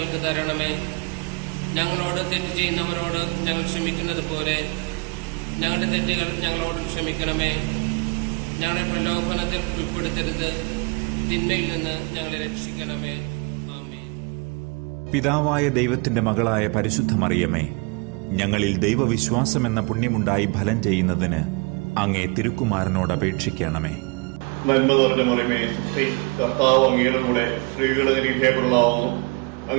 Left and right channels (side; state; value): left; quieter; 30.4 dB